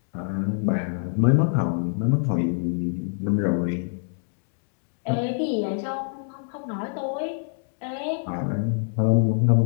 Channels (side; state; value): right; silent; digital silence